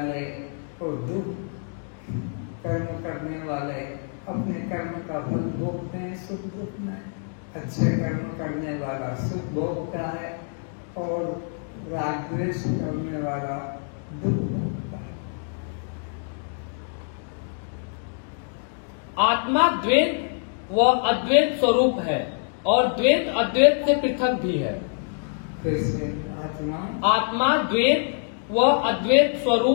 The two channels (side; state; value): right; silent; 61 dB below the other